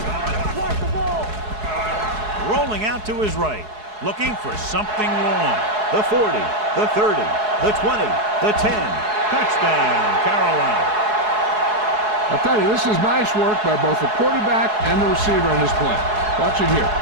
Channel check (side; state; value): left; late; 4.7 ms